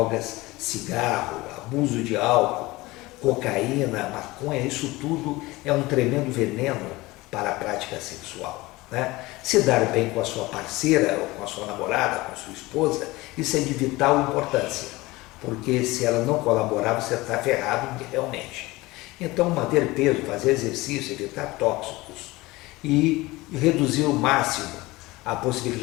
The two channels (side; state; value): right; quieter; 20.7 dB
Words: cigarro, abuso de álcool, cocaína, maconha. Isso tudo é um tremendo veneno para a prática sexual, né? Se dar bem com a sua parceira, ou com a sua namorada, com a sua esposa, isso é de vital importância, porque se ela não colaborar, você está ferrado realmente. Então, manter peso, fazer exercício, evitar tóxicos e reduzir ao máximo a